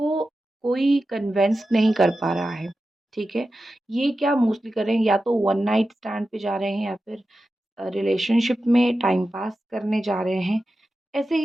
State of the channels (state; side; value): normal; both; correlation 0.92